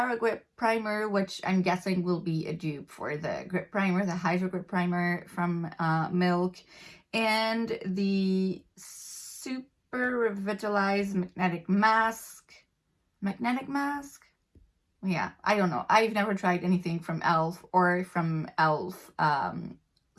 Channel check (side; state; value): both; identical; correlation 1.00